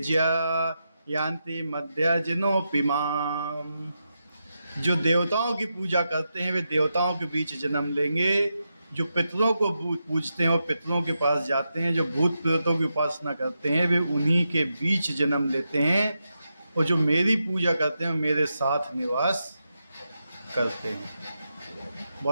यान्ति मध्यजनोऽपि माम्। जो देवताओं की पूजा करते हैं वे देवताओं के बीच जन्म लेंगे। जो पितरों को पूजते हैं वो पितरों के पास जाते हैं। जो भूत प्रेतों की उपासना करते हैं वे उन्हीं के बीच जन्म लेते हैं। और जो मेरी पूजा करते हैं मेरे साथ निवास करते हैं।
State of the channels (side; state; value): both; inverted; correlation -0.87